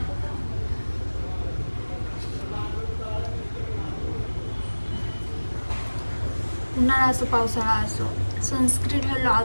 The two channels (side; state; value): both; inverted; correlation -1.00